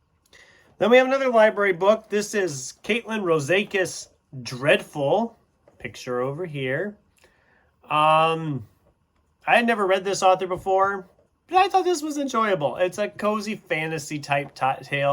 Then we have another library book. This is Caitlin Rosakis Dreadful. Picture over here. I had never read this author before, but I thought this was enjoyable. It's a cozy fantasy type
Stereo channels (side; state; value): both; identical; correlation 1.00